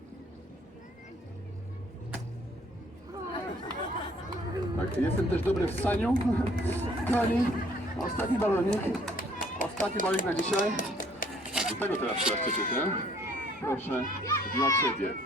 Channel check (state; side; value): normal; both; correlation 0.60